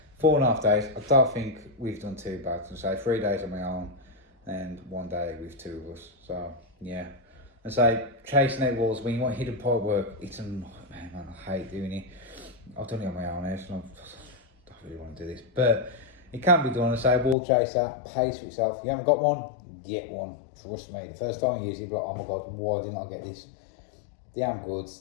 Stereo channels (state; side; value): drops out; right; at 17.4 s